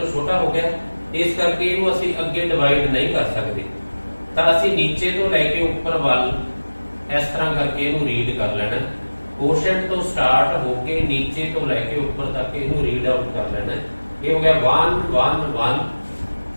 ਛੋਟਾ ਹੋ ਗਿਆ। ਇਸ ਕਰਕੇ ਇਹਨੂੰ ਅਸੀਂ ਅੱਗੇ ਡਿਵਾਈਡ ਨਹੀਂ ਕਰ ਸਕਦੇ ਤਾਂ ਅਸੀਂ ਨੀਚੇ ਤੋਂ ਲੈ ਕੇ ਉੱਪਰ ਵੱਲ ਇਸ ਤਰ੍ਹਾਂ ਕਰਕੇ ਇਹਨੂੰ ਰੀਡ ਕਰ ਲੈਣਾ। ਕੋਸ਼ੈਂਟ ਤੋਂ ਸਟਾਰਟ ਹੋ ਕੇ ਨੀਚੇ ਤੋਂ ਲੈ ਕੇ ਉੱਪਰ ਤੱਕ ਇਹਨੂੰ ਰੀਡ ਆਊਟ ਕਰ ਲੈਣਾ। ਇਹ ਹੋ ਗਿਆ 1 1 1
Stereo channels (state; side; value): inverted; both; correlation -1.00